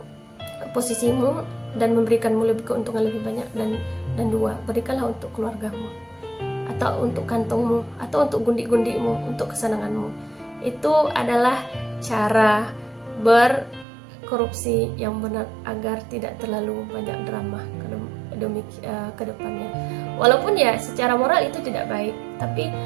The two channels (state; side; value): drops out; left; at 13.9 s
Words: posisimu dan memberikanmu keuntungan lebih banyak. Dan 2 berikanlah untuk keluargamu, atau untuk kantongmu, atau untuk gundik-gundikmu, untuk kesenanganmu. Itu adalah cara berkorupsi yang benar, agar tidak terlalu banyak drama ke depannya. Walaupun ya secara moral itu tidak baik, tapi